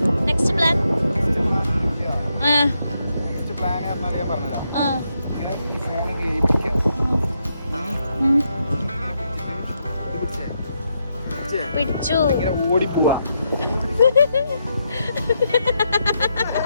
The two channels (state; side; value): inverted; both; correlation -0.81